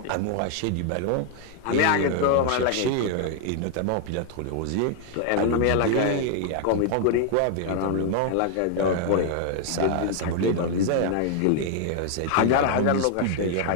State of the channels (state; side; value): different; both; correlation 0.00